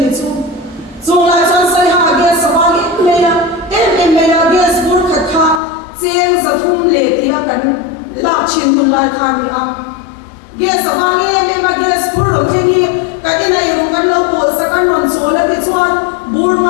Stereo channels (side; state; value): right; drops out; at 5.6 s